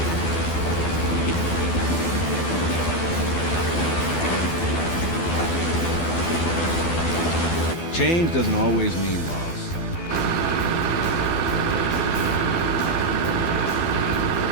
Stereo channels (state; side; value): late; right; 12 ms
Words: Change doesn't always mean loss.